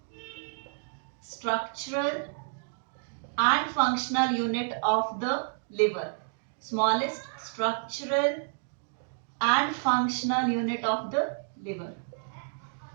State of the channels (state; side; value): silent; left; digital silence